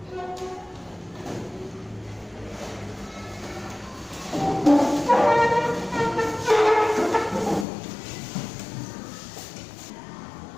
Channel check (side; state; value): right; drops out; at 7.7 s